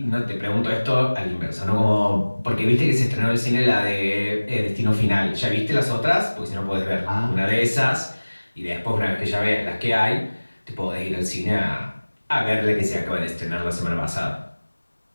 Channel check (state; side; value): inverted; both; correlation -1.00